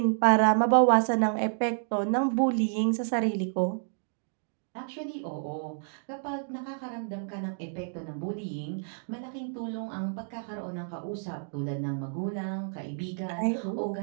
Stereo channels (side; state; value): left; silent; digital silence